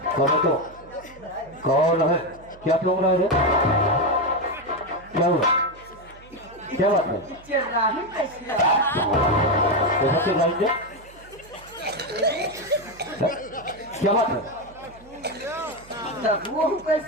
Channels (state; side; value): noise; right; hum, 23 dB below the sound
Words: कौन है? क्या तुम रहा है? क्या हुआ? क्या बात है? क्या बात है? वो